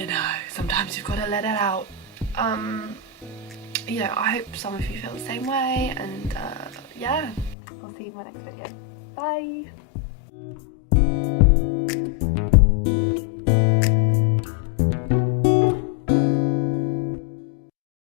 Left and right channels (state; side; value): drops out; right; at 7.6 s